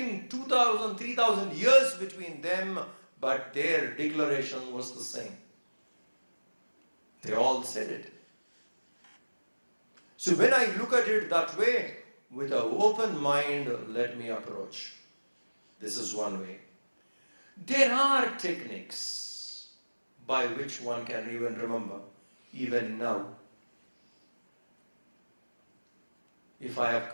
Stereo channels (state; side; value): inverted; both; correlation -1.00